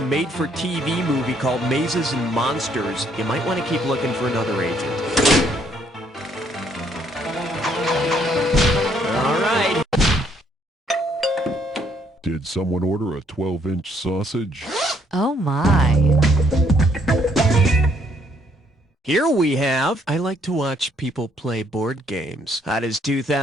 made-for-TV movie called Mazes and Monsters, you might want to keep looking for another agent. All right. Did someone order a 12-inch sausage? Oh my. Here we have, I like to watch people play board games. How does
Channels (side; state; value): both; normal; correlation 0.68